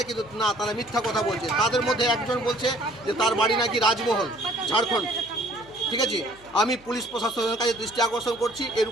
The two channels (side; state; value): right; noise; hum, 27 dB below the sound